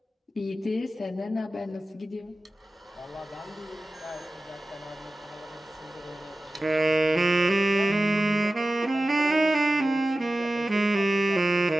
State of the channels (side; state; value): both; normal; correlation 0.95